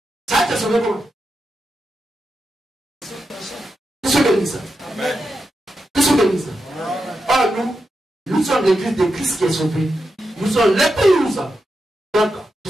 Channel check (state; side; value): normal; both; correlation 0.87